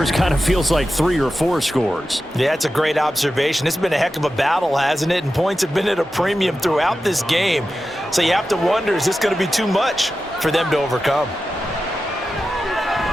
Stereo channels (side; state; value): both; normal; correlation 0.92